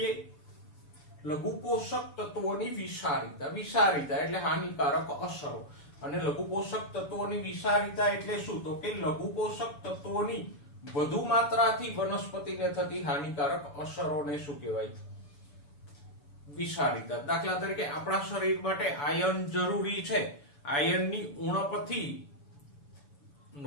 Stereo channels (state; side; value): late; right; 7.0 ms